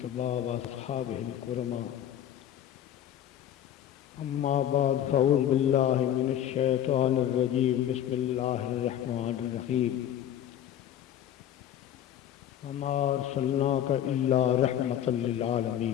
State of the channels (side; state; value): right; quieter; 10.7 dB